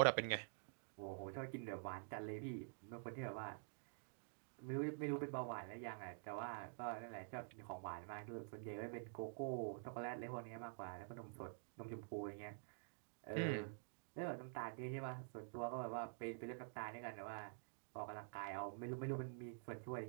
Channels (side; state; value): left; silent; digital silence